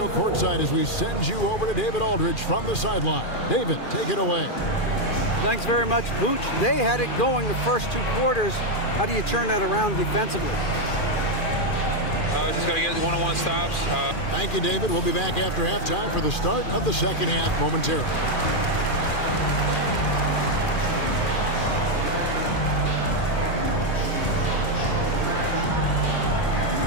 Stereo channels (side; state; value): right; late; 2.4 ms